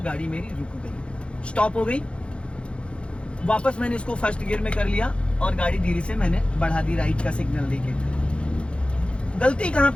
गाड़ी मेरी रुक गई, स्टॉप हो गई। वापस मैंने इसको फर्स्ट गियर में कर लिया और गाड़ी धीरे से मैंने बढ़ा दी राइट का सिग्नल देके। गलती कहाँ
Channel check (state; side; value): late; right; 0.058 ms